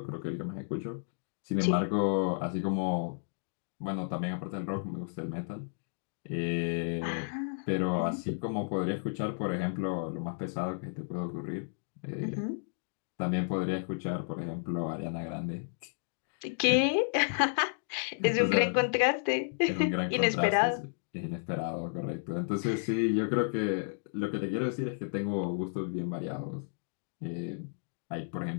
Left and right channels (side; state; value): right; silent; digital silence